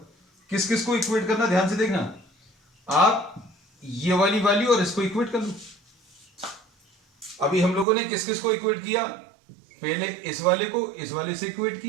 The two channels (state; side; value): drops out; left; at 7.9 s